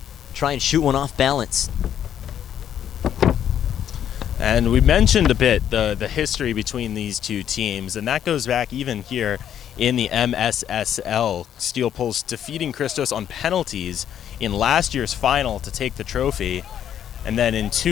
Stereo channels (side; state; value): right; quieter; 9.9 dB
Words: try and shoot one off balance. And we mentioned a bit the history between these two teams, and that goes back even here in the MSSL. Steel Pulse defeating Christos on penalties in last year's final to take the trophy, and then in